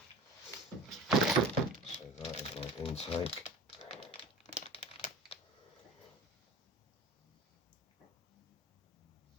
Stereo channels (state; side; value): normal; both; correlation 0.38